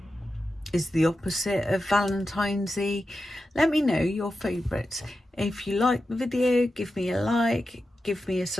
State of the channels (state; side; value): normal; both; correlation 0.91